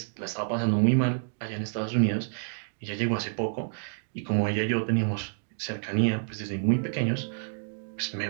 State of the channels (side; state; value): left; silent; digital silence